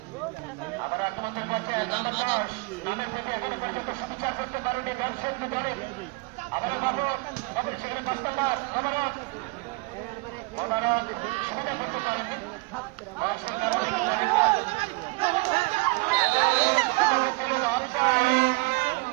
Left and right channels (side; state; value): left; quieter; 26.2 dB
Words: আবার আগমনের পর্যায়ে নামের প্রতি এখনো পর্যন্ত সুবিচার করতে পারেনি দর্শক দলে। আবার সেখানে কষ্টপাত